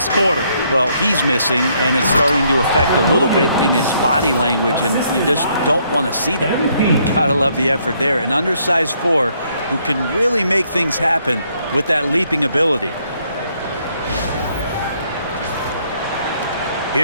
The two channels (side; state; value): both; inverted; correlation -0.70